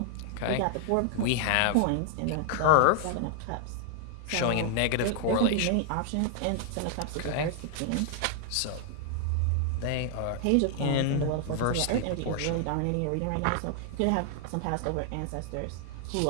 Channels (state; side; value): different; both; correlation 0.00